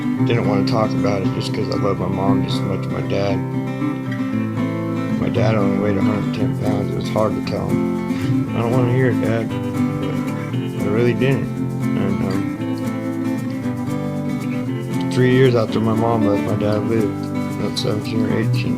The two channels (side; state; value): both; identical; correlation 1.00